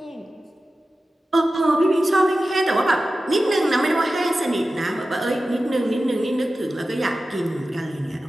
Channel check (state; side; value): normal; both; correlation 0.94